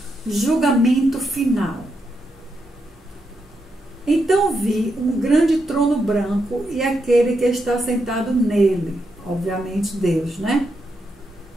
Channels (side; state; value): both; normal; correlation 0.83